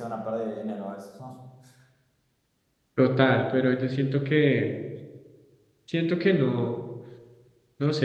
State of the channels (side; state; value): both; identical; correlation 1.00